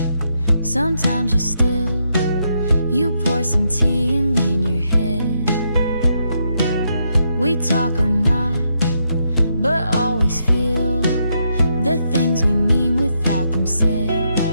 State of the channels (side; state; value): both; inverted; correlation -0.79